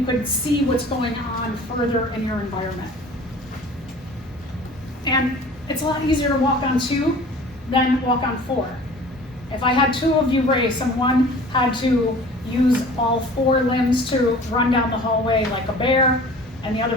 could see what's going on further in your environment. And it's a lot easier to walk on 2 than walk on 4. If I had 2 of you race and one had to use all 4 limbs to run down the hallway like a bear, and the other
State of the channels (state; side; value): normal; both; correlation 0.45